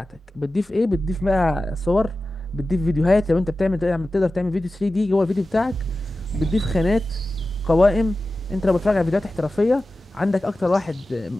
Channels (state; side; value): normal; both; correlation 0.94